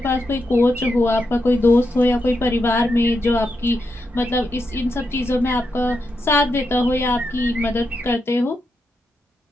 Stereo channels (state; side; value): normal; both; correlation 0.85